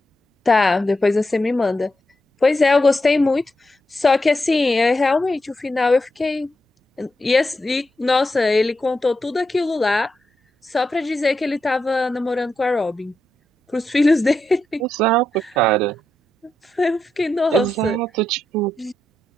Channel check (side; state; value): both; normal; correlation 0.85